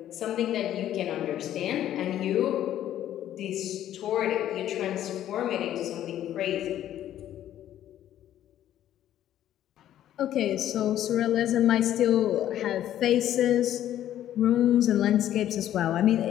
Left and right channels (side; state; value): right; quieter; 11.8 dB